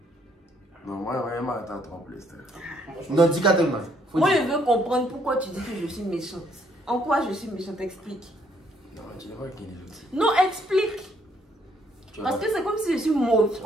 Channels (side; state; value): both; normal; correlation 0.68